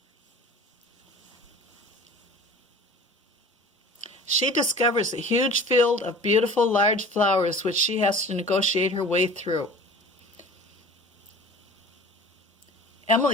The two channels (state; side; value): normal; both; correlation 0.42